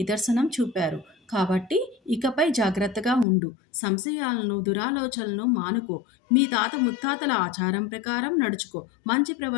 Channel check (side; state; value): right; drops out; at 3.2 s